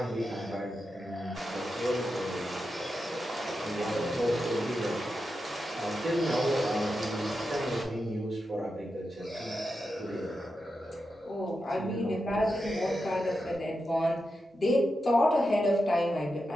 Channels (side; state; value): both; normal; correlation 0.88